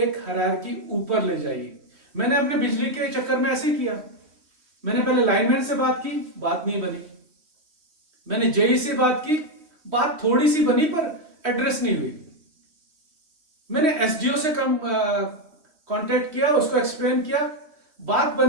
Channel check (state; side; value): late; left; 3.1 ms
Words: हायरार्की ऊपर ले जाइए। मैंने अपने बिजली के चक्कर में ऐसे ही किया। मैंने पहले लाइनमैन से बात की, बात नहीं बनी। मैंने जेई से बात की, बात थोड़ी सी बनी पर एड्रेस नहीं हुई। मैंने एसडीओ से कांटेक्ट किया, उसको एक्सप्लेन किया, बात